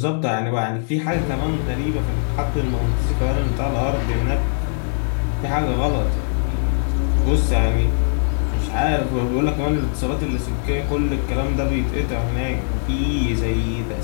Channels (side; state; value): right; silent; digital silence